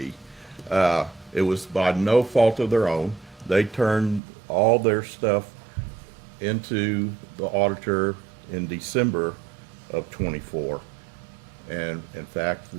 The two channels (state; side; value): drops out; left; at 4.2 s